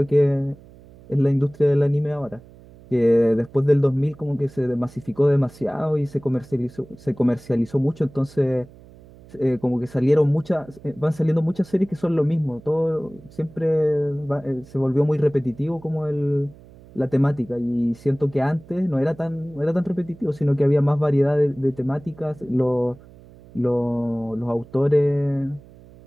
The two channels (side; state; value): right; noise; hum, 22 dB below the sound